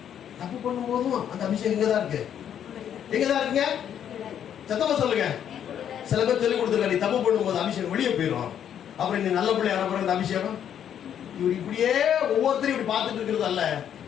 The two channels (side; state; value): right; quieter; 9.4 dB